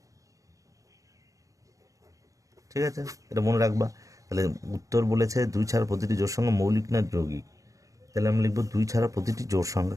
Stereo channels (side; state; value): left; late; 0.16 ms